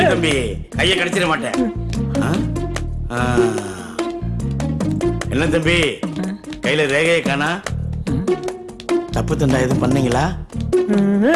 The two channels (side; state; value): both; identical; correlation 1.00